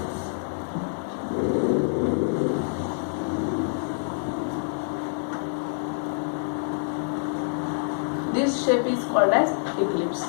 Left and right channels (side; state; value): right; silent; digital silence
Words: this shape is called as eclipse.